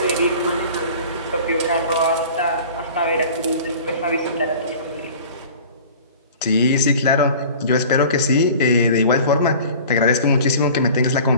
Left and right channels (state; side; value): inverted; both; correlation -0.43